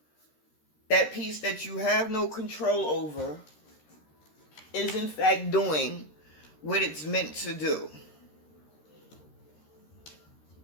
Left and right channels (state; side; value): late; right; 13 ms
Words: that piece that you have no control over, is in fact doing what it's meant to do.